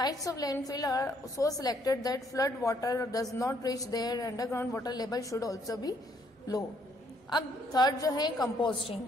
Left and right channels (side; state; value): both; normal; correlation 0.68